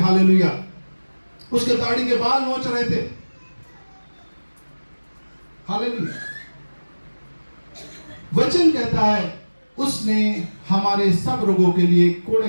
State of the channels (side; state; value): both; inverted; correlation -1.00